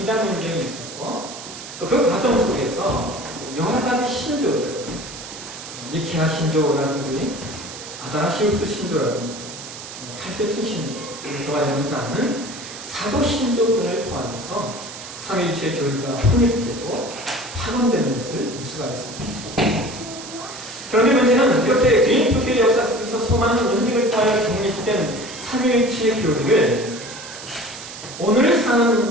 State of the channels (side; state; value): right; noise; hiss, 12 dB below the sound